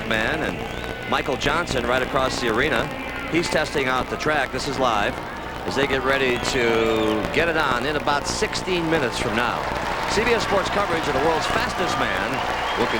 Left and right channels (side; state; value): both; identical; correlation 1.00